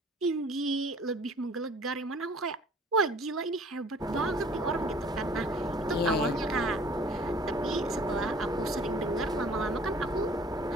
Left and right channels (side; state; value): both; normal; correlation 0.52